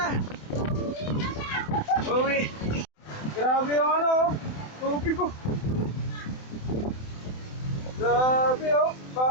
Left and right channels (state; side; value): late; right; 27 ms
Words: Uwi! Grabe yung ano, tubig ko. Grabe oh,